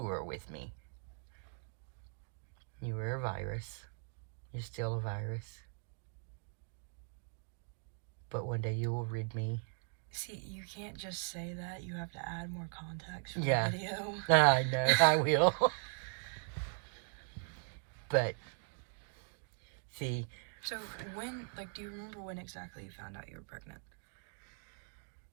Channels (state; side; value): silent; left; 52 dB below the other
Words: were with me. You were a virus. You're still a virus. But one day you will rid me. See, you can't just say that. You have to add more context for the video. I know, I will. But, see. So do you remember when exactly you found out you were pregnant?